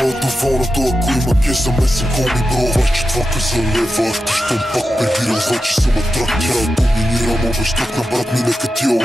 доволното, ако има кеш за месен коми бро. 24-ка за лева, ти щом пак прибирал, значи съм атрак. Тя доминирам, обещах на брат ми, нека тия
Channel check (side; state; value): both; normal; correlation 0.89